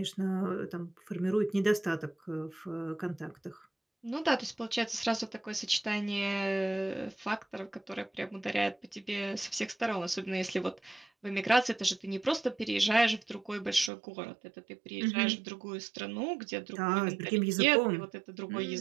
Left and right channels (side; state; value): left; drops out; at 13.9 s